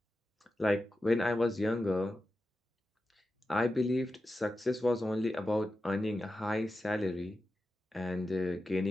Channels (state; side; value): normal; both; correlation 0.91